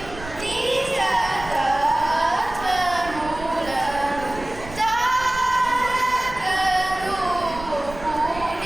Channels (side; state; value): right; noise; rumble, 14 dB below the sound